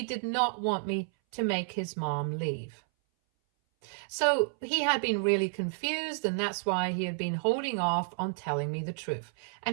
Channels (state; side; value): silent; left; 57 dB below the other